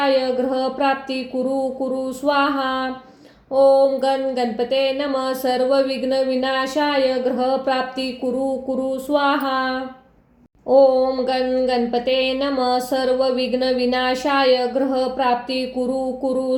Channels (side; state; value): both; identical; correlation 1.00